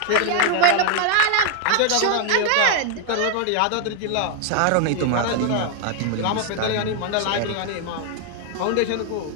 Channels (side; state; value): both; different; correlation 0.00